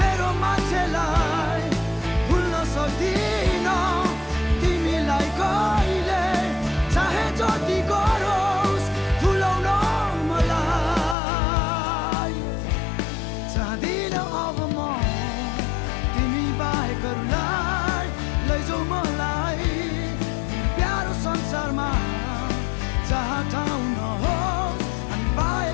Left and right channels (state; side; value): drops out; right; at 11.2 s